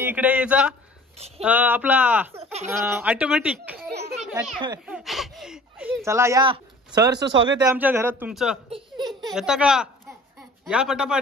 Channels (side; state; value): both; normal; correlation 0.47